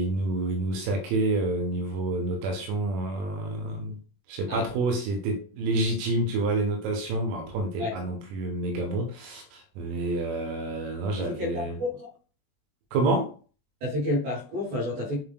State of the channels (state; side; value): late; left; 20 ms